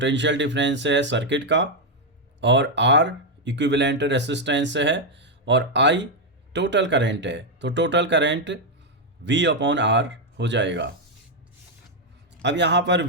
डिफरेंस है सर्किट का, और R इक्विवेलेंट रेसिस्टेंस है, और I टोटल करंट है, तो टोटल करंट V/R हो जाएगा। अब यहाँ पर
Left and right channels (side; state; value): both; normal; correlation 0.01